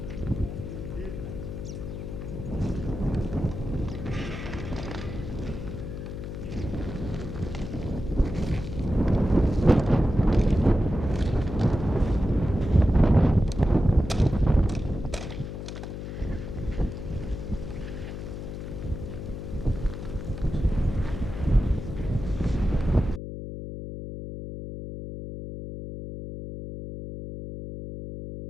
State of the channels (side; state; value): left; noise; hum, 7 dB below the sound